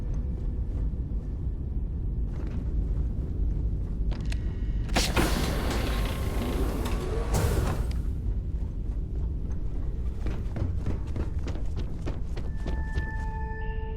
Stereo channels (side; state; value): both; identical; correlation 1.00